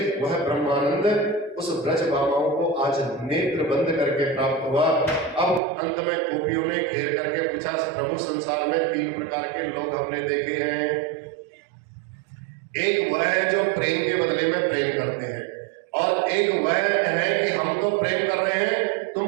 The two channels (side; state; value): left; drops out; at 5.6 s